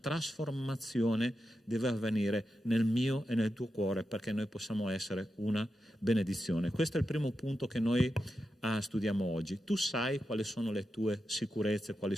deve avvenire nel mio e nel tuo cuore perché noi possiamo essere una benedizione. Questo è il primo punto che noi studiamo oggi. Tu sai quali sono le tue sicurezze, quali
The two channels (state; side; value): normal; both; correlation 0.89